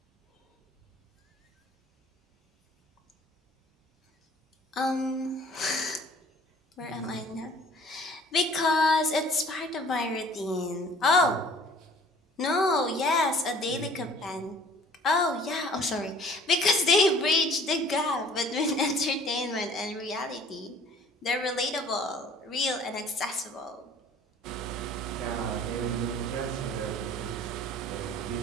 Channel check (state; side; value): normal; both; correlation 0.52